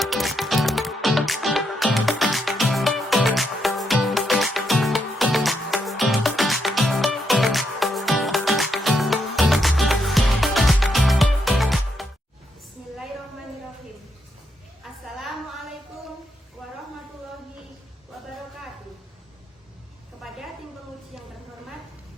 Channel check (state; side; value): normal; both; correlation 0.79